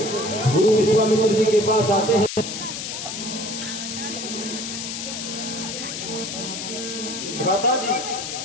गुरु विश्वामित्र जी के पास आते हैं। भ्राता जी,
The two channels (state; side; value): noise; left; hiss, 6 dB below the sound